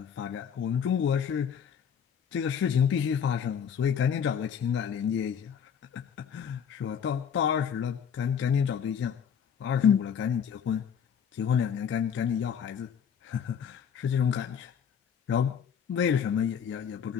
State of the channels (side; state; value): right; quieter; 7.7 dB